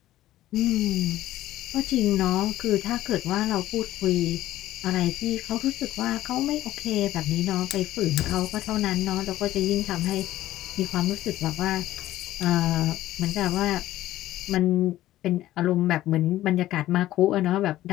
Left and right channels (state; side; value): quieter; right; 14.6 dB